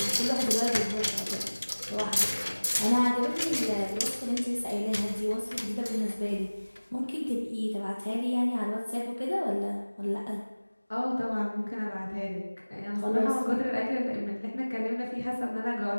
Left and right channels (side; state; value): both; inverted; correlation -1.00